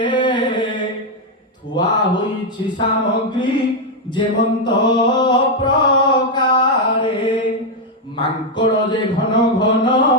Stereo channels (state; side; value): normal; both; correlation 0.02